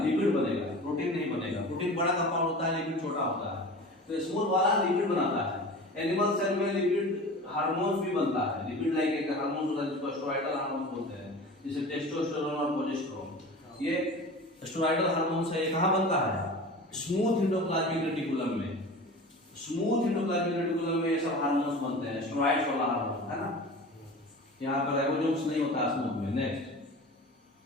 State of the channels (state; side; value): normal; both; correlation 0.36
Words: बनेगा, प्रोटीन नहीं बनेगा। प्रोटीन बड़ा कंपाउंड होता है, लिपिड छोटा होता है। तो स्मूथ वाला लिपिड बनाता है, एनिमल सेल में लिपिड हार्मोन्स भी बनता है। लिपिड लाइक एक हार्मोन होता है जिसको स्टेरॉइडल हार्मोन बोलते हैं, जैसे टेस्टोस्टेरोन और प्रोजेस्टेरोन। ये स्टेरॉइडल हार्मोन से कहाँ बनता है? स्मूथ एंडोप्लाज्मिक रेटिकुलम में। स्मूथ एंडोप्लाज्मिक रेटिकुलम में ये सब हार्मोन्स बनते हैं, स्टेरॉइड्स वाला हार्मोन, है ना। यहाँ पर राइबोसोम्स नहीं होता स्मूथ में। नेक्स्ट